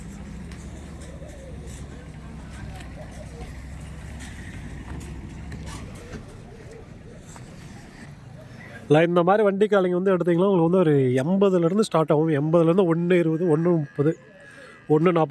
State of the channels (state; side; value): identical; both; correlation 1.00